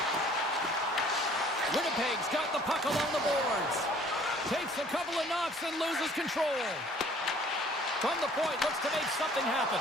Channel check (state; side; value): normal; both; correlation 0.55